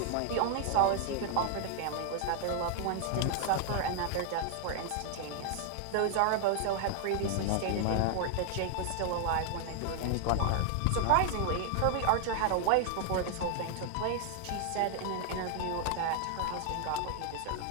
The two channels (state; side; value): different; both; correlation 0.00